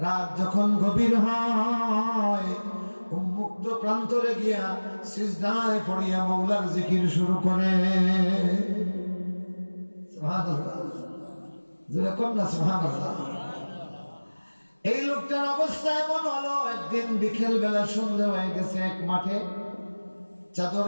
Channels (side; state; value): both; inverted; correlation -1.00